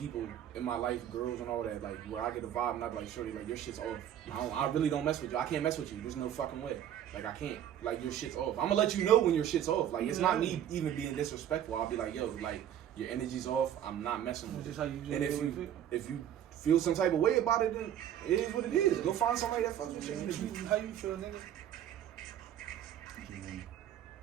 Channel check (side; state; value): left; quieter; 10.4 dB